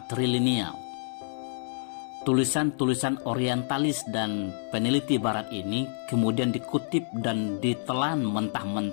Tulisan-tulisan orientalis dan peneliti barat ini kemudian dikutip dan ditelan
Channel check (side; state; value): right; silent; 59 dB below the other